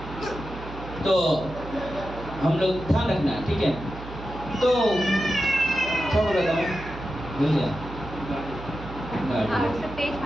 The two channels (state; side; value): noise; right; hum, 12 dB below the sound